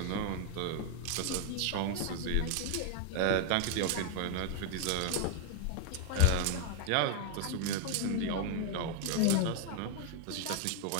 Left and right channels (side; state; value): both; different; correlation 0.00